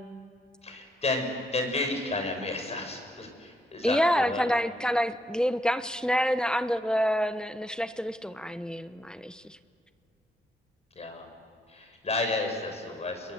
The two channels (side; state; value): both; normal; correlation 0.74